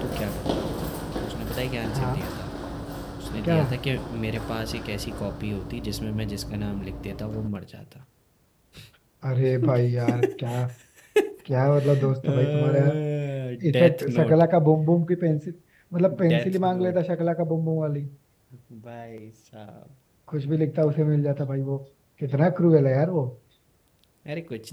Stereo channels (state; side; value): identical; both; correlation 1.00